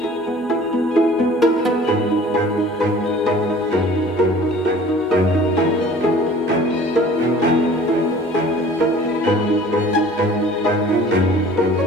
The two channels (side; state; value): both; normal; correlation 0.48